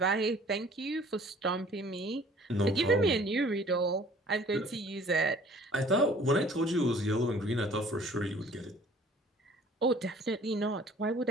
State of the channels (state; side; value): normal; both; correlation 0.53